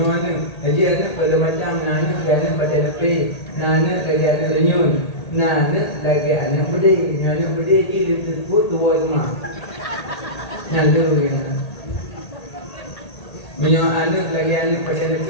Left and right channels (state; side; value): late; right; 1.8 ms